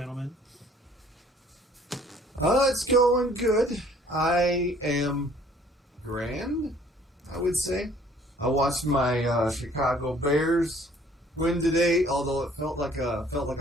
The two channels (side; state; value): both; normal; correlation 0.57